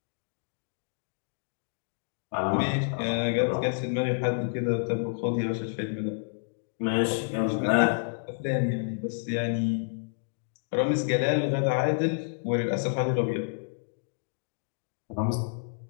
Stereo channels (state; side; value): silent; right; digital silence